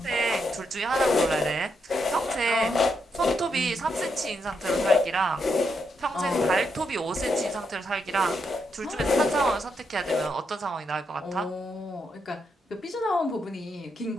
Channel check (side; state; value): both; normal; correlation 0.80